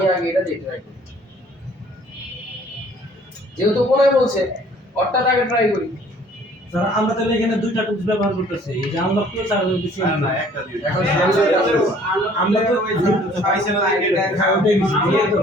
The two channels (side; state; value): both; normal; correlation 0.56